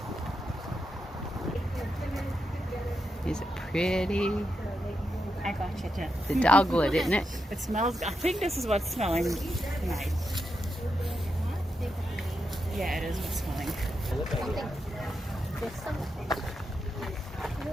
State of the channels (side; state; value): both; normal; correlation 0.86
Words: Is it pretty? I got you, Jen. The dogwood, isn't it? It smells, I think this is what's smelling nice. Yeah, it is what's smelling.